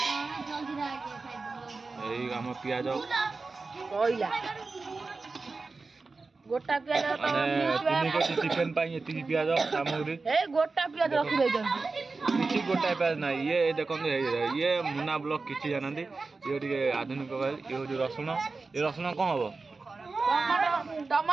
एई हम पियाज कोइला गोटा पियाज तो तीन केजी चिकन पाई एती पियाज सामग्री ए गोटा पियाज रखि दे जंती किछि गोटा पियाज ना ये देखो ये मुना ब्लॉक किछि जानंती ये ଟିକେ आधुनिक ये जो रसुण ये रसुण कौन हबो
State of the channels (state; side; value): quieter; left; 3.9 dB